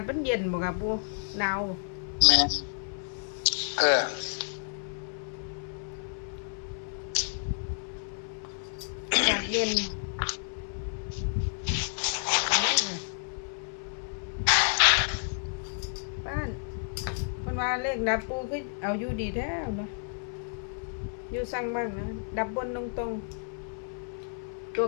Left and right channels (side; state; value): right; silent; digital silence